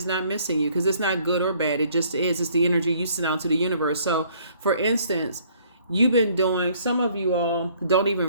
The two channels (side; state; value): both; inverted; correlation -0.61